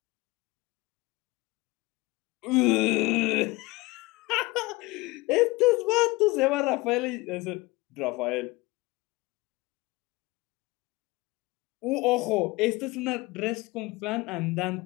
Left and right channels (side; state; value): right; quieter; 22.3 dB